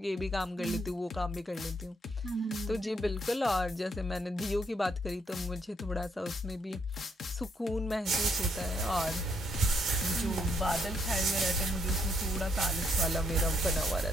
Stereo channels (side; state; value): both; normal; correlation 0.73